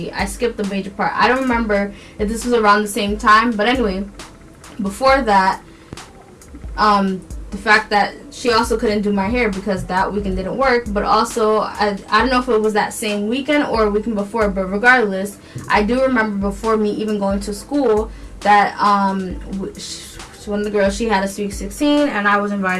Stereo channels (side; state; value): both; identical; correlation 1.00